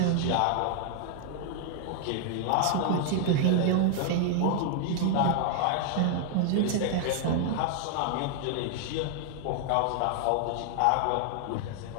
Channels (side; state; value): both; different; correlation 0.00